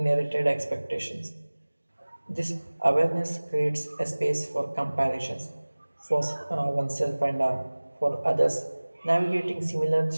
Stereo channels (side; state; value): both; inverted; correlation -1.00